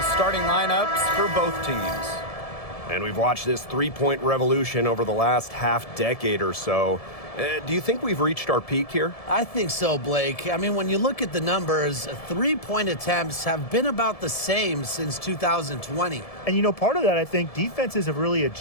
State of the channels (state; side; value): late; right; 1.7 ms